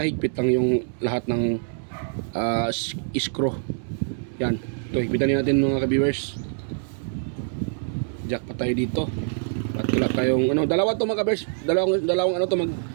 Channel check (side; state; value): left; silent; 62 dB below the other